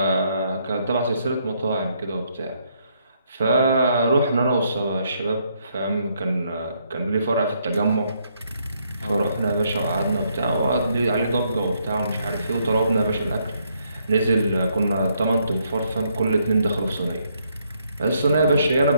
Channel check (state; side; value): inverted; both; correlation -0.73